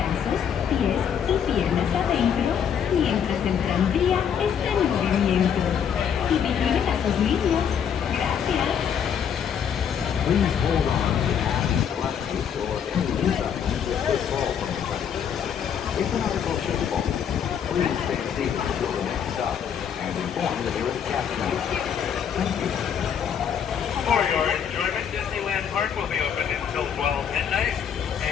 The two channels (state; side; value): quieter; right; 8.0 dB